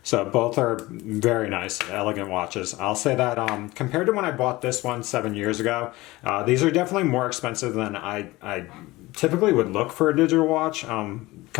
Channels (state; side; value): quieter; right; 20.0 dB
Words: So both are very nice, elegant watches. I'll say that compared to when I bought this one 7 years ago, these are definitely more expensive than I typically would look for a digital watch